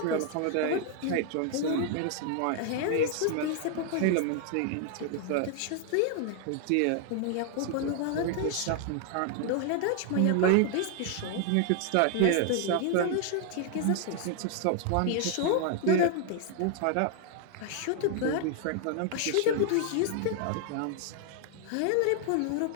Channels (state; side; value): different; both; correlation 0.00